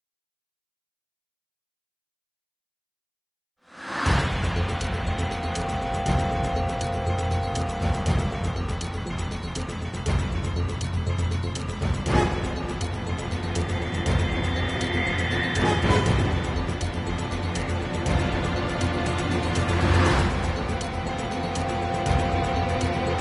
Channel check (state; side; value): identical; both; correlation 1.00